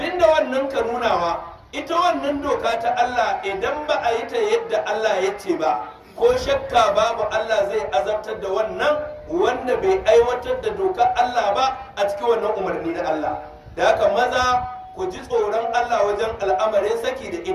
wannan ka nunawa, ita wannan doka ta Allah idan ba a yi ta yadda Allah ya ce ba, ko shakka babu Allah zai azabtar da wannan wanda bai aiwatar da dokar Allah ba a cikin wannan umarni na Allah. Da haka maza ku ji tsoron Allah wajen al'amarin saki da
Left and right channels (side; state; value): both; identical; correlation 1.00